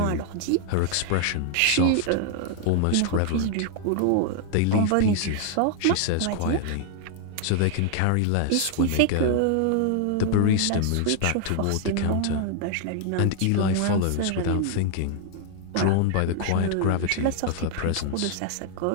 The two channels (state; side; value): different; both; correlation 0.00